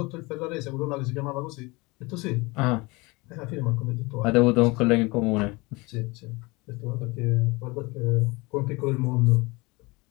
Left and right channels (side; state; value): right; quieter; 24.8 dB